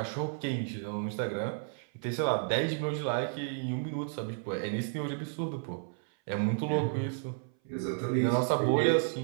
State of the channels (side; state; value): left; silent; 56 dB below the other